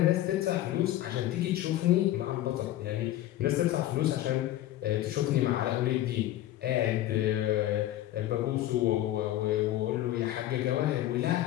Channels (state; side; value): quieter; right; 14.0 dB